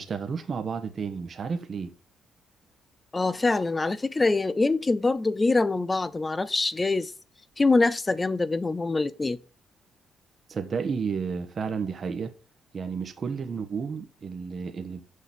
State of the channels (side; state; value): both; normal; correlation 0.92